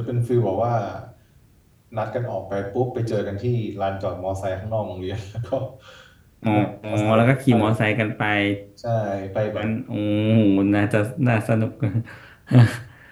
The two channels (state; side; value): identical; both; correlation 1.00